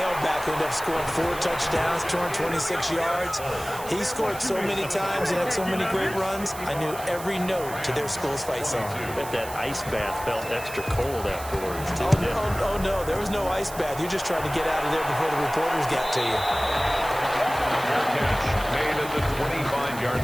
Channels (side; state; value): right; noise; hiss, 14 dB below the sound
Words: who ended up scoring 4 touchdowns, 226 yards. He scored so many times and had so many great runs, I knew every note to their school's fight song. I bet that ice bath felt extra cold afterwards, too. Oh, no, there was no ice bath. You just tried to get out of there before the reporters got to you. catch made at the 25-yard